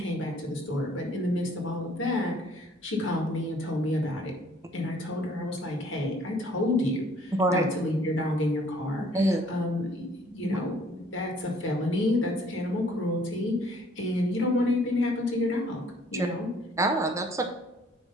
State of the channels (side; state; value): both; normal; correlation 0.59